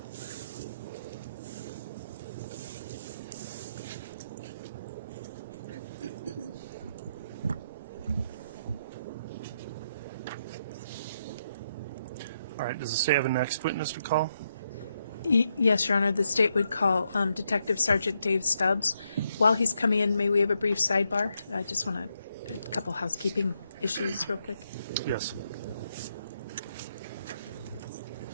All right, does the state have a next witness to call? Yes, Your Honor. The state would call Detective Sergeant Dave Stubbs. While he's coming in, may we have a brief sidebar? I just want a couple housekeeping issues real quick. Yes.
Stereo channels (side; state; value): both; inverted; correlation -0.80